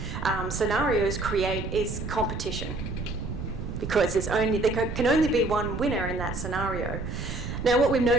scenarios create is competition, because there can only be one winner in that scenario. Now, what we've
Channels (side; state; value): right; noise; rumble, 6 dB below the sound